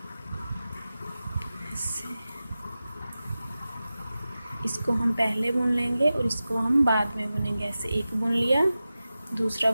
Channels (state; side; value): inverted; both; correlation -0.94